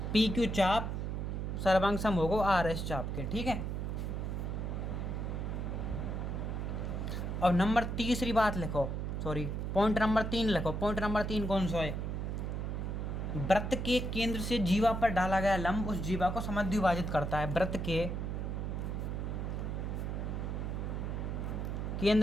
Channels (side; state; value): right; noise; hum, 2 dB below the sound